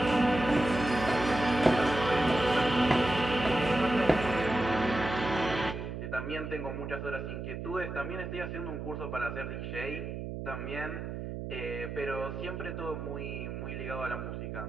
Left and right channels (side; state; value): right; noise; hum, 6 dB below the sound